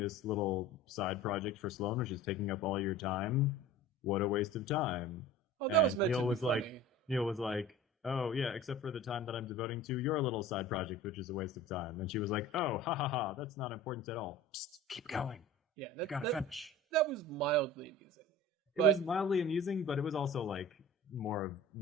little side project for Sloane, which is taking up all your time. What a waste of time." Oh, that and Neal was like, "Oh yeah, except for the time that I'm devoting to your little side project, which is a waste of time." And she was like, "Oh, ha ha ha, that's not important at all. Psst, keep going. Yeah, you gotta finish." That was mildly amusing. It was mildly amusing, but it was also like more of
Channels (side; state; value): both; normal; correlation 0.39